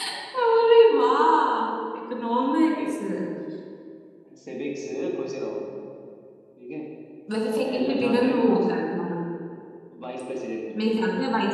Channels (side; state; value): both; identical; correlation 1.00